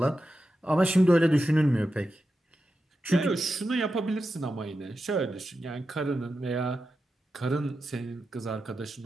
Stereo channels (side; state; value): both; normal; correlation 0.90